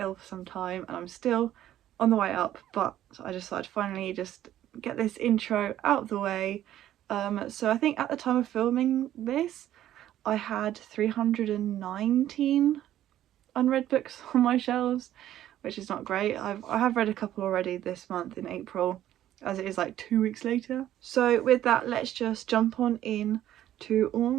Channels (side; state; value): left; quieter; 12.4 dB